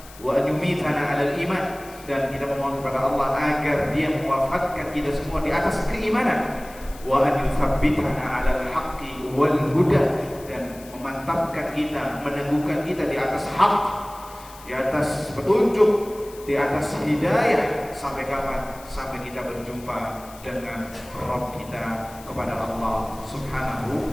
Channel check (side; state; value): left; noise; hiss, 20 dB below the sound